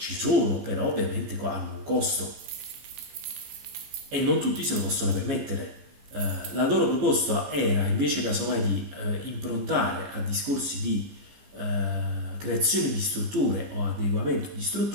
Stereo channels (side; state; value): left; late; 14 ms